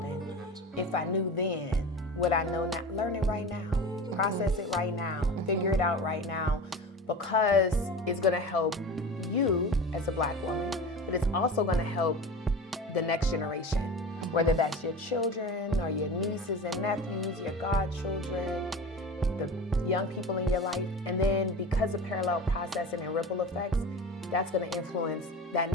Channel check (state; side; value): normal; both; correlation 0.32